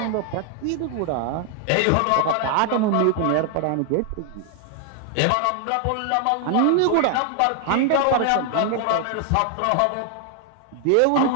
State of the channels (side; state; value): both; different; correlation 0.00